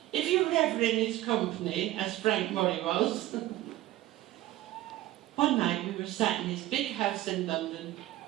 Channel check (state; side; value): quieter; left; 15.5 dB